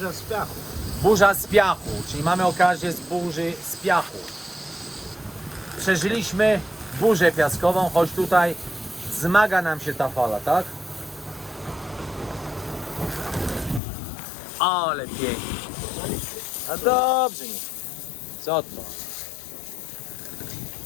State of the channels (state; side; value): drops out; right; at 13.8 s